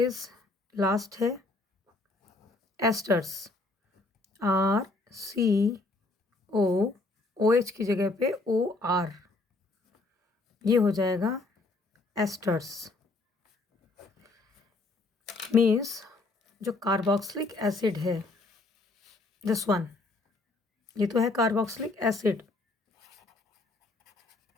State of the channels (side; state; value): right; quieter; 3.1 dB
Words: last है एस्टर्स, RCO, OH की जगह पे OR, ये हो जाएगा एस्टर्स। मीन्स जो कार्बोक्सिलिक एसिड है, दिस वन, ये तो है कार्बोक्सिलिक एसिड,